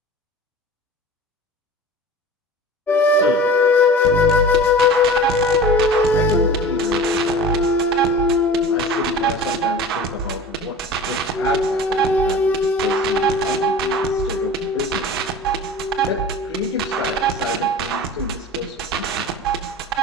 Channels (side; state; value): both; normal; correlation 0.38